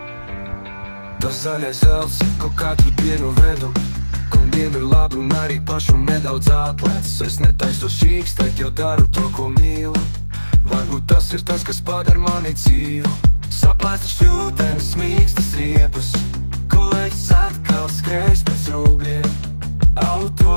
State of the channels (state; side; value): inverted; both; correlation -1.00